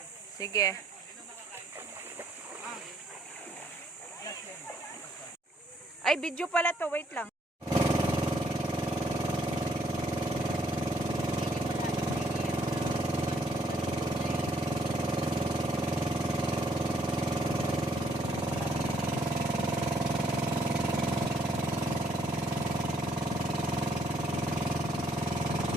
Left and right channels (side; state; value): both; normal; correlation 0.68